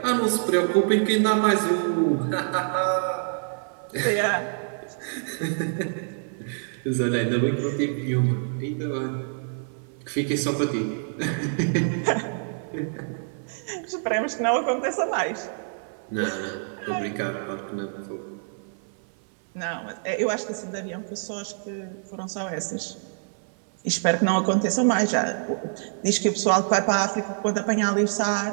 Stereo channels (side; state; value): left; silent; 57 dB below the other